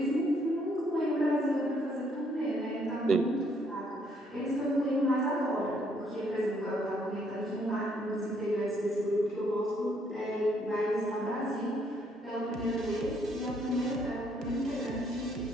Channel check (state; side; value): normal; both; correlation 0.69